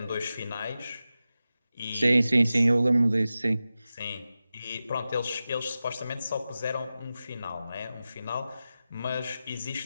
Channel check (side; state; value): both; inverted; correlation -0.94